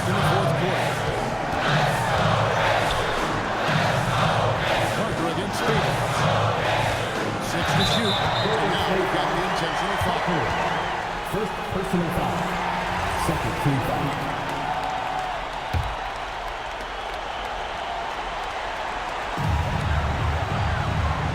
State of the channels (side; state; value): both; identical; correlation 1.00